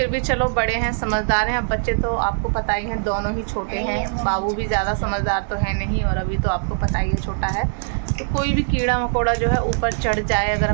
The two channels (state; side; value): silent; left; digital silence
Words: भी चलो बड़े हैं, समझदार हैं। अब बच्चे तो आपको पता ही है, दोनों ही छोटे हैं। बाबू भी ज़्यादा समझदार तो है नहीं, और अभी तो आपको पता ही है छोटा है। तो कोई भी कीड़ा मकोड़ा जो है ऊपर चढ़ जाए, अगर